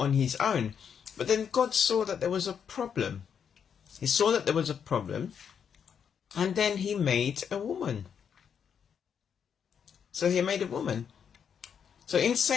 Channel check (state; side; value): quieter; right; 7.5 dB